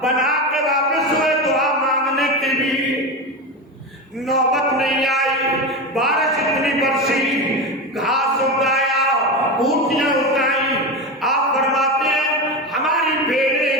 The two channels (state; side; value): normal; both; correlation 0.20